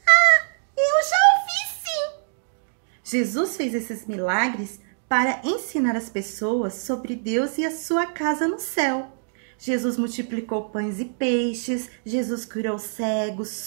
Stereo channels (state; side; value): silent; left; digital silence